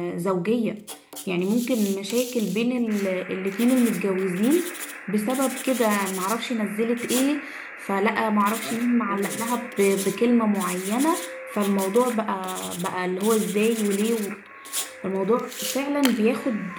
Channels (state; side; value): identical; both; correlation 1.00